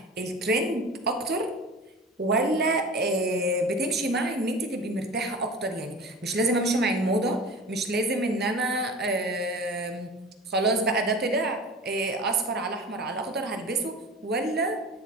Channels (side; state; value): both; normal; correlation 0.36